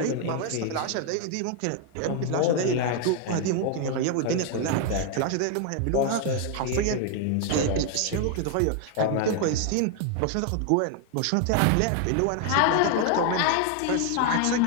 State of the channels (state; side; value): different; both; correlation 0.00